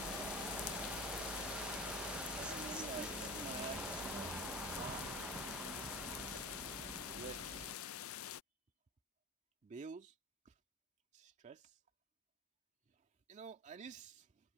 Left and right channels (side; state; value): both; normal; correlation 0.32